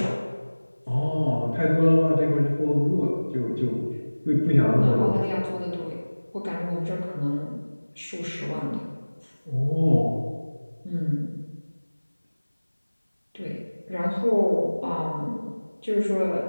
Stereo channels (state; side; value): inverted; both; correlation -1.00